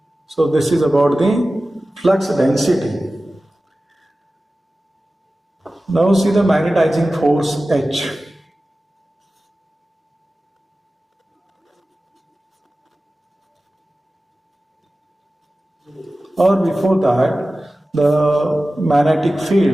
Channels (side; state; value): both; normal; correlation 0.96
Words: So this is about the flux density. Now see the magnetizing force H. Or before that, the magnetic